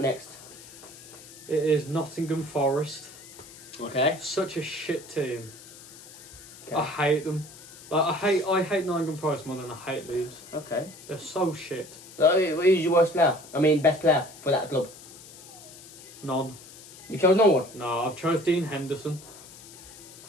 next? It is Nottingham Forest. Okay. Such a shit team. Okay. I hate them. Like I hate Nottingham Forest more than I hate Leeds. Okay. They're so shit. Who's your worst player? I mean, best player for that club? None. You chose no one? No, I've chose Dean Henderson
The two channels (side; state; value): left; noise; hiss, 18 dB below the sound